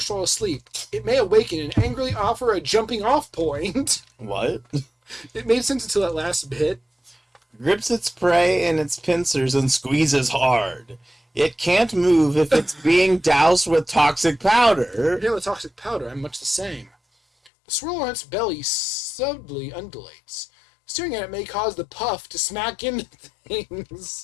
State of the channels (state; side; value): drops out; right; at 17.5 s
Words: while asleep, it may awaken and angrily offer a jumping off point. What? It made sense until that last bit. Grips its prey in its pincers and squeezes hard. It can't move if it's being doused with toxic powder. Yeah, with toxic powder, I'm much the same. The swirl on its belly subtly undulates. Staring at it may cause the puff to smack into